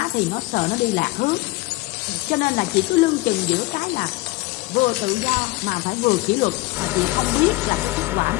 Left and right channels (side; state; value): right; quieter; 21.6 dB